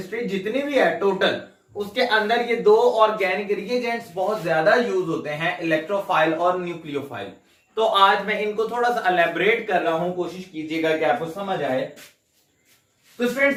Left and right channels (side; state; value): both; identical; correlation 1.00